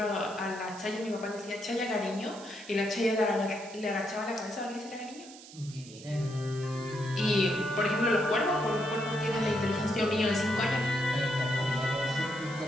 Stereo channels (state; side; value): noise; right; hiss, 18 dB below the sound